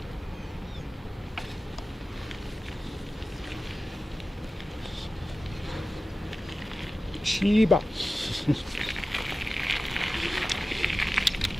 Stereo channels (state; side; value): normal; both; correlation 0.95